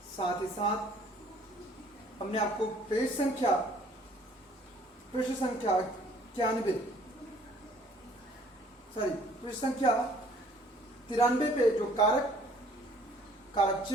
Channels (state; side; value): normal; both; correlation 0.57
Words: साथ ही साथ हमने आपको पृष्ठ संख्या 93 पे जो कारक